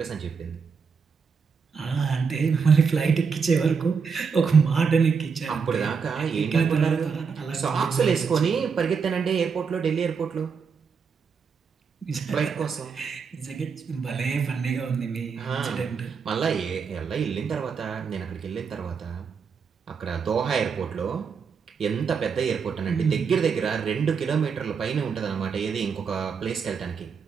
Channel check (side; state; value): left; quieter; 5.9 dB